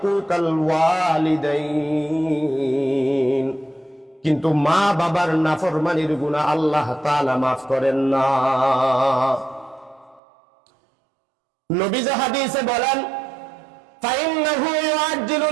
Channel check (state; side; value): drops out; left; at 10.2 s